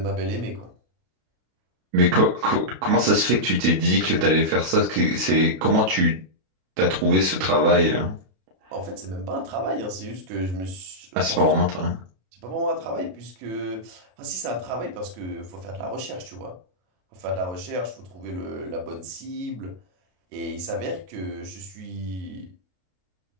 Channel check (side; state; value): left; late; 32 ms